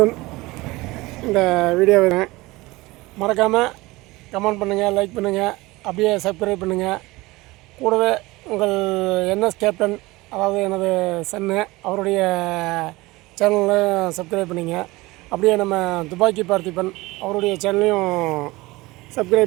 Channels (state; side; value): quieter; left; 21.0 dB